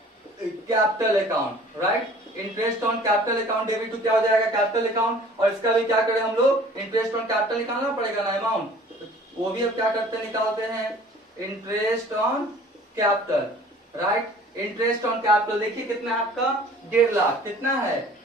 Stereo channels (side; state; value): both; normal; correlation 0.49